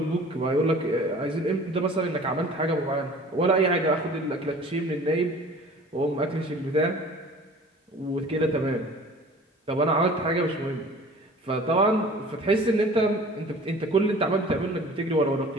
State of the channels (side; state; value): both; normal; correlation 0.46